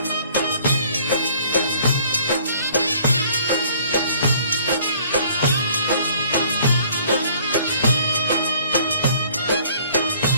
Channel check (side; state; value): both; inverted; correlation -0.56